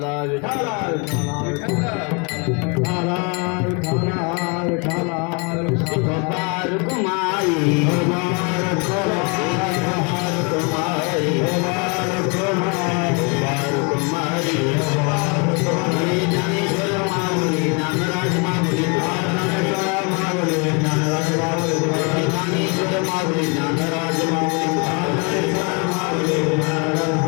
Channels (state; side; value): quieter; right; 32.7 dB